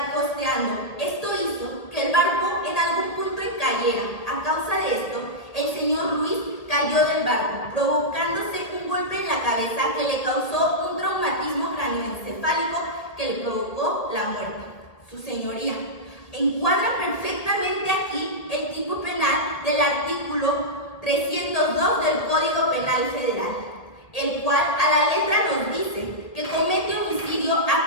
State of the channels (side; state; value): right; late; 1.8 ms